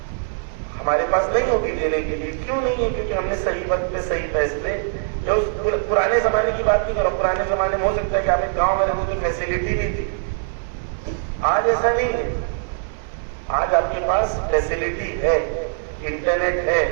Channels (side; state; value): left; silent; digital silence